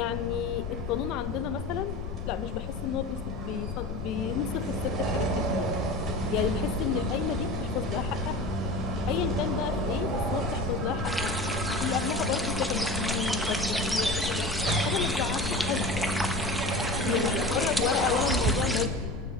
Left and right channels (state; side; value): noise; left; rumble, 7 dB below the sound